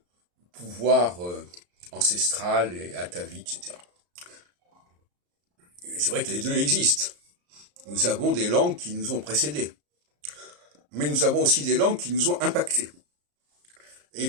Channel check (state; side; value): late; left; 34 ms